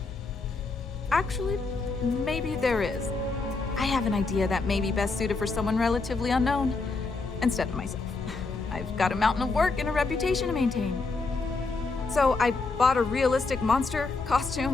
Actually, maybe there is. I have an idea that may be best suited for someone relatively unknown, instead of myself. I've got a mountain of work and a reputation to maintain. So I bought a realistic monster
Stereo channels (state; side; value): quieter; right; 3.9 dB